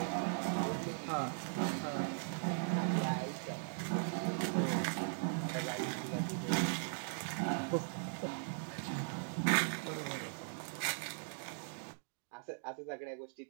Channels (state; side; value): silent; left; digital silence